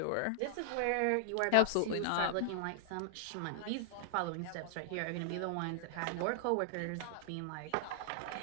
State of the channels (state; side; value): different; both; correlation -0.01